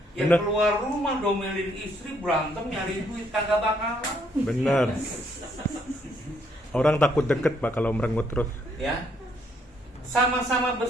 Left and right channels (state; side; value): normal; both; correlation 0.70